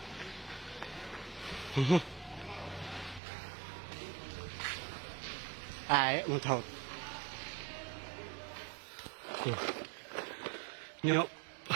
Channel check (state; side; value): drops out; left; at 3.2 s